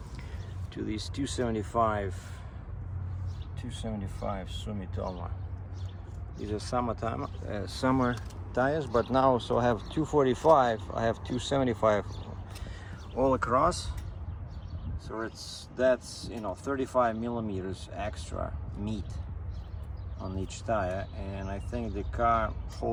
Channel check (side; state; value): both; identical; correlation 1.00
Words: these 275 Sumitomo. These are summer tires, but now so I have 245, I have 275 all across, so that's 35 millimeters extra meat on each tire, and I think the car